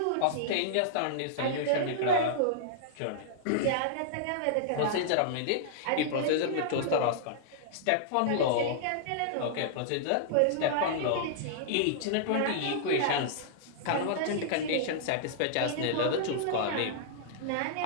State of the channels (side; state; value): both; different; correlation -0.01